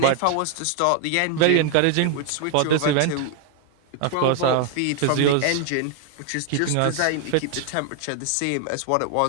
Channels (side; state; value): both; different; correlation 0.00